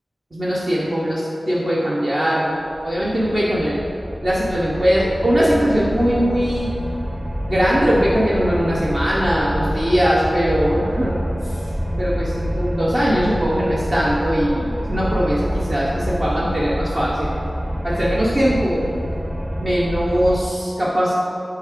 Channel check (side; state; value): both; normal; correlation 0.97